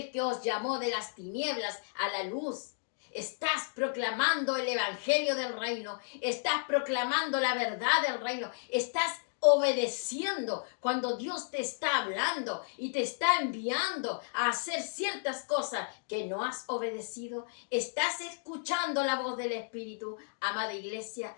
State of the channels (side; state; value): right; silent; digital silence